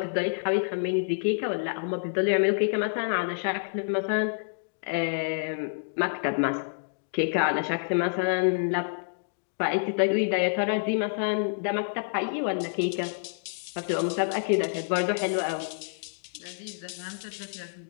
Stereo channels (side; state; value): right; silent; digital silence